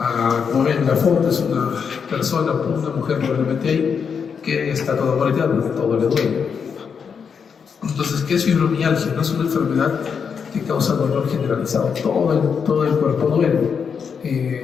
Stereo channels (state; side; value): quieter; right; 6.5 dB